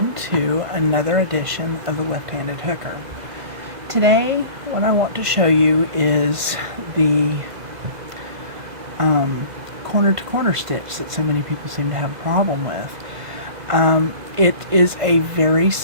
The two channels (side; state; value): left; late; 2.0 ms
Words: to another edition of the Left-Handed Hooker. Today, what I want to show you is the corner-to-corner stitch that so many people seem to have a problem with. It is a very